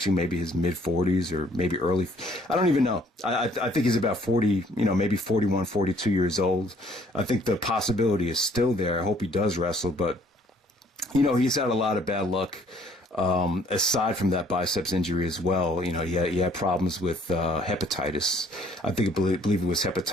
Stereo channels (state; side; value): normal; both; correlation 0.61